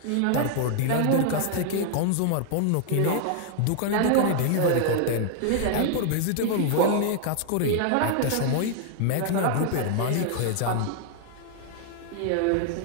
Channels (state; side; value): different; both; correlation 0.00